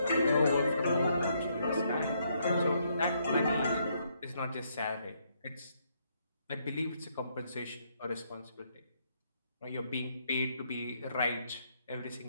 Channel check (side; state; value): both; inverted; correlation -0.73